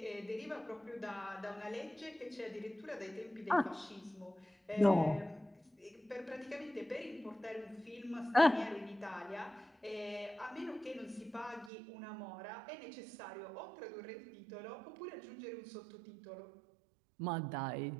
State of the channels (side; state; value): left; drops out; at 11.7 s